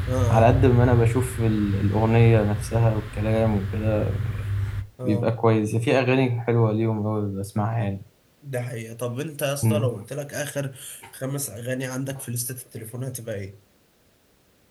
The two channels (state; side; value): identical; both; correlation 1.00